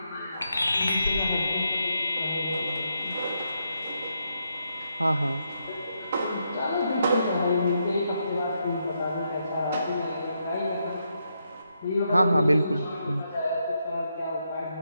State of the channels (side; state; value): both; inverted; correlation -0.80